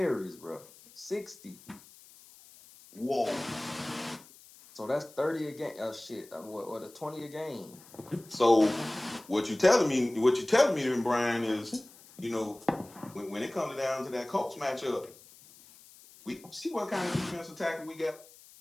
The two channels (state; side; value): noise; left; hiss, 23 dB below the sound